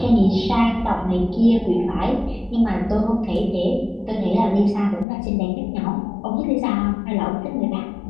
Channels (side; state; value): right; drops out; at 5.1 s